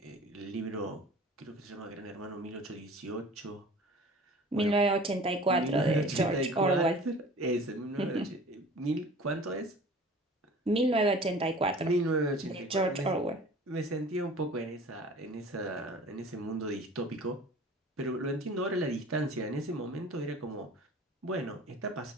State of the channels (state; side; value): normal; both; correlation 0.44